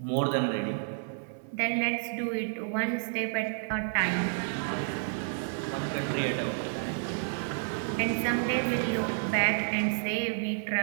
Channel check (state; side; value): silent; left; 58 dB below the other